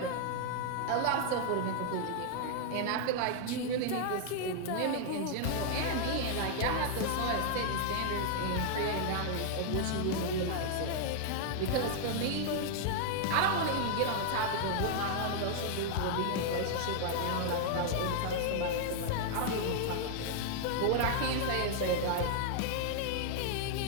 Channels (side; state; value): both; different; correlation 0.00